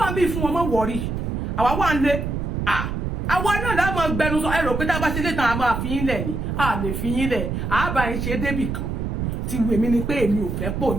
ń bí fún wọn mọ́ wọ̀rí àwa wà ń lé àwa náà láwọn gbẹnu sọ ẹrọ pé tá a bá ṣe lé tán a máa fi yín lẹ̀ ni a lè fi yín lẹ̀ àbá yín ṣe débì kan ti wù mí ni pé èmi ò fẹ́ pò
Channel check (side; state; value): right; noise; rumble, 3 dB below the sound